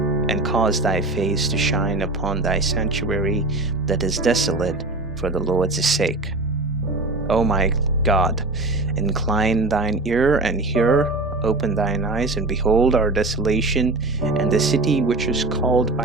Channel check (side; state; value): left; quieter; 3.0 dB